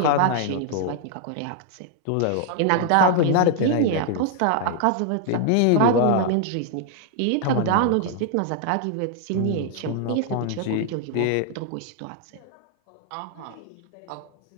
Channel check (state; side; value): different; both; correlation 0.00